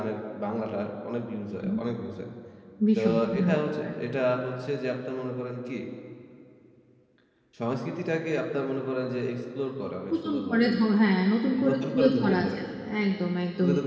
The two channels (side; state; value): both; identical; correlation 1.00